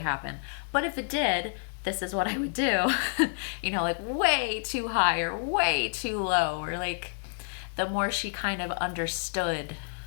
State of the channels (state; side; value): silent; right; digital silence